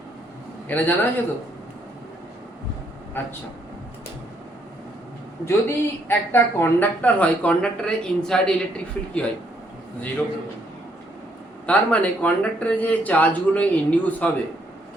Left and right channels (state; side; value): normal; both; correlation 0.71